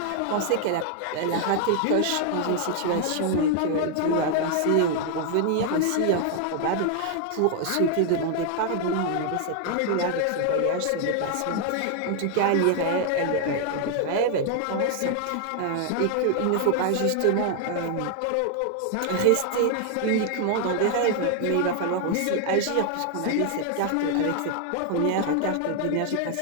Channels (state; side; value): different; both; correlation 0.00